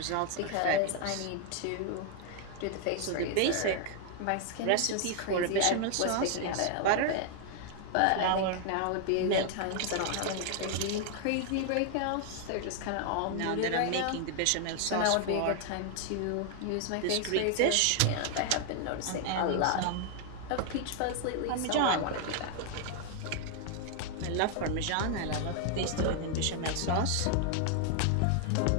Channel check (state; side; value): different; both; correlation 0.00